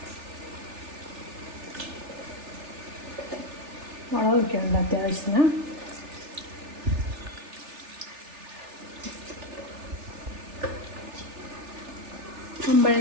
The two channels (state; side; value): late; left; 3.4 ms